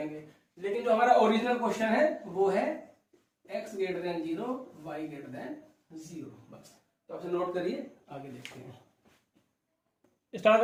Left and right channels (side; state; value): both; identical; correlation 1.00